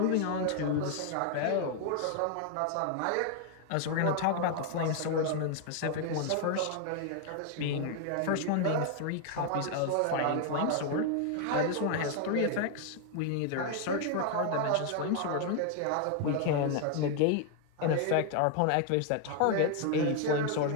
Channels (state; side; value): different; both; correlation 0.00